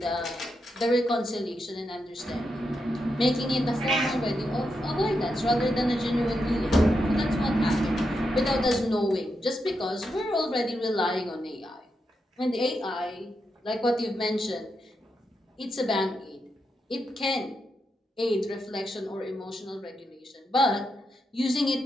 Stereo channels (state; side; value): normal; both; correlation 0.85